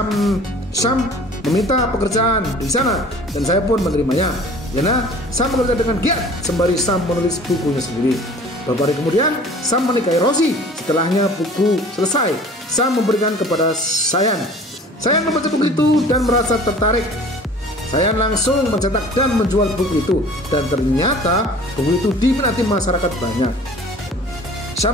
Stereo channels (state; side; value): normal; both; correlation 0.46